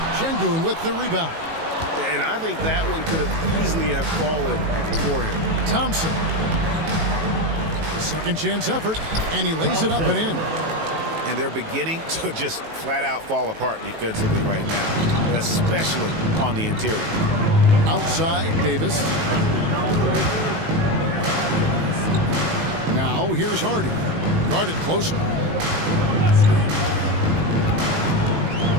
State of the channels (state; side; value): late; left; 18 ms